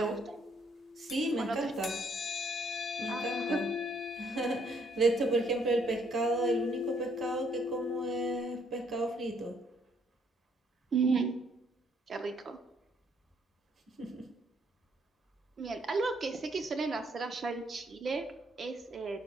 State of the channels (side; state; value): both; normal; correlation 0.68